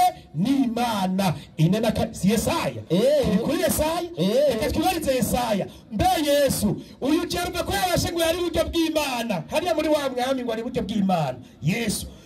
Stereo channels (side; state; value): both; identical; correlation 1.00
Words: n'Imana inena si Yesaya kuri Yesaya reka twibarize Yesaya mbe Yesu uyu cyarumve ko yabashe ngo yari buryo bw'Imana hariya muri wa mwami ngo ari buryo bw'Imana Yesu